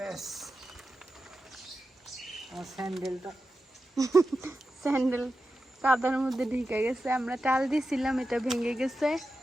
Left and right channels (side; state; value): both; normal; correlation 0.91